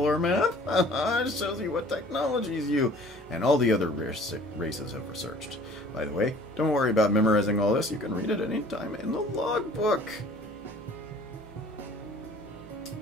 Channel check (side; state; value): both; normal; correlation 0.51